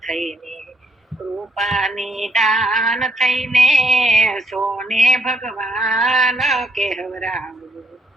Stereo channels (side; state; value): both; normal; correlation 0.72